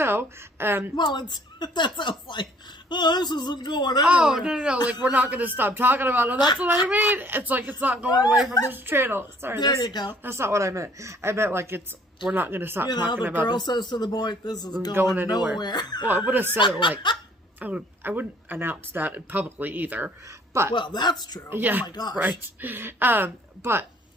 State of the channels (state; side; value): normal; both; correlation 0.58